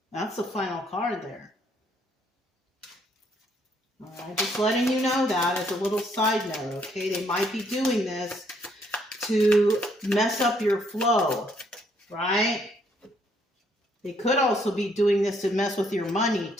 That's the final card there. All right, just letting you know that as a little side note, okay? They might be doing this to mess up your flow, right? They could also be doing this to mess with your money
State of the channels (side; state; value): both; normal; correlation 0.69